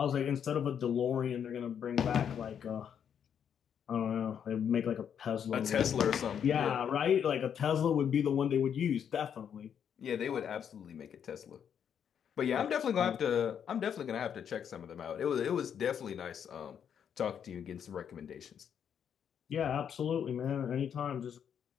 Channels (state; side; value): quieter; right; 8.3 dB